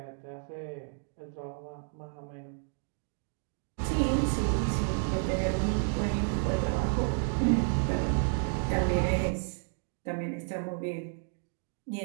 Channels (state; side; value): silent; left; 57 dB below the other